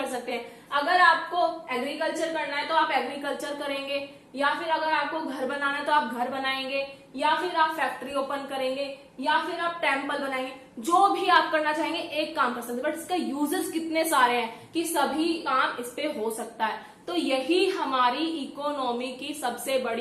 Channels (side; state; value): both; identical; correlation 1.00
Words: सकते हैं। अगर आपको एग्रीकल्चर करना है तो आप एग्रीकल्चर करेंगे, या फिर अगर आपको घर बनाना है तो आप घर बनाएंगे, या फिर आप फैक्ट्री ओपन करेंगे, या फिर आप टेम्पल बनाएंगे। जो भी आप करना चाहेंगे एक काम कर सकते हैं, बट इसका यूजेस कितने सारे हैं कि सभी काम इस पे हो सकता है। तो यही हमारी इकोनॉमी की सबसे